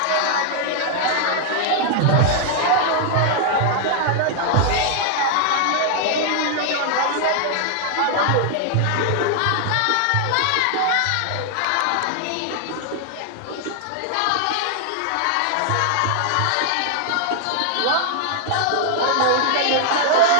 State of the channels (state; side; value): different; both; correlation 0.00